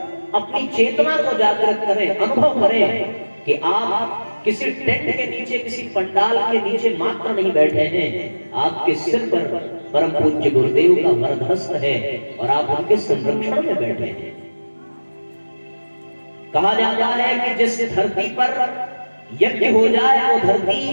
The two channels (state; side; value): inverted; both; correlation -1.00